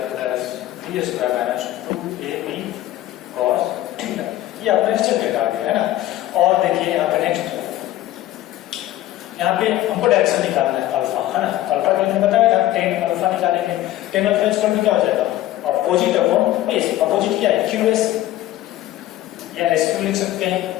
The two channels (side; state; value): right; quieter; 14.7 dB